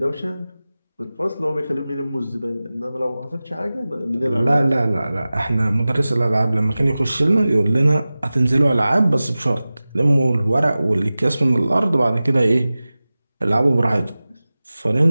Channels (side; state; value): both; inverted; correlation -0.97